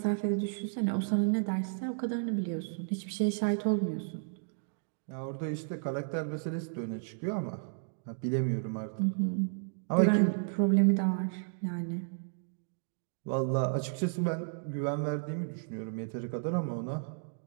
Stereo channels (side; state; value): left; silent; digital silence